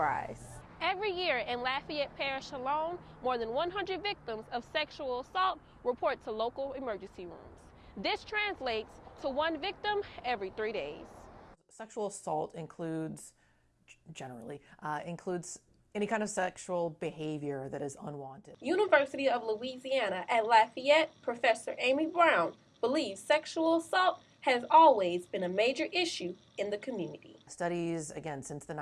Every year in Lafayette Parish alone, more than 100 victims of sexual assault report to local emergency rooms. This translates to one victim every 3 days. Sexual assault generally includes any kind of sexual behavior that is unwanted. University of Louisiana at Lafayette, Professor Amy Brown believes sexual assault has always been a major issue in the community. Studies, again, since the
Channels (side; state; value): both; identical; correlation 1.00